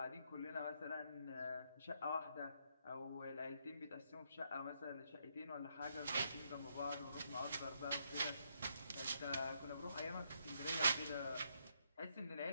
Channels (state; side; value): inverted; both; correlation -0.76